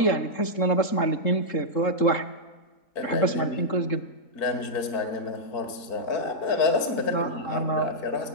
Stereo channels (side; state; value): right; late; 3.7 ms